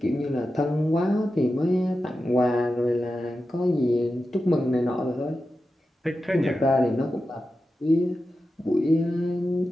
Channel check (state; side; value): normal; both; correlation 0.91